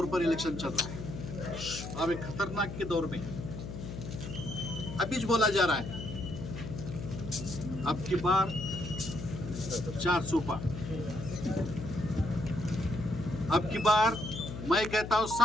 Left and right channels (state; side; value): noise; left; hum, 8 dB below the sound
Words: पर इलेक्शन चल रहा है। अब एक ख़तरनाक के दौर में अभी जो बोला जा रहा है, अब की बार 400 पार, अब की बार मैं कहता हूँ